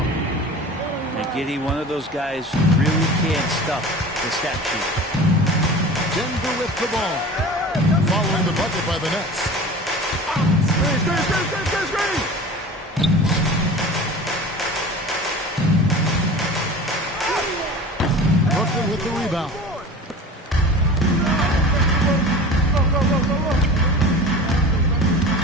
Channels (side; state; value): both; normal; correlation 0.37